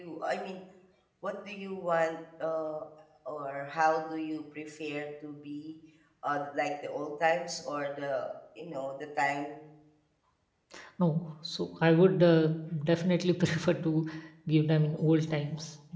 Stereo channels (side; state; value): both; identical; correlation 1.00